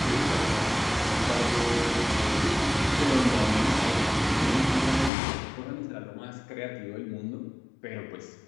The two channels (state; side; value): drops out; right; at 5.1 s